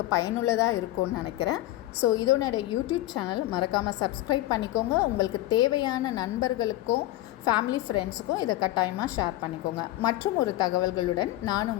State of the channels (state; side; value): quieter; right; 16.1 dB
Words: பயனுள்ளதாக இருக்கும்னு நினைக்கிறேன். ஸோ இதோட யூடியூப் சேனல் மறக்காமல் சப்ஸ்கிரைப் பண்ணிக்கோங்க. உங்களுக்கு தேவையான நண்பர்களுக்கும் ஃபேமிலி ஃப்ரெண்ட்ஸுக்கும் இதை கட்டாயமாக ஷேர் பண்ணிக்கோங்க. மற்றும் ஒரு தகவல்களுடன் நான்